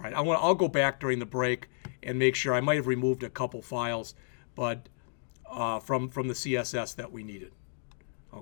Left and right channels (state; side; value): silent; right; digital silence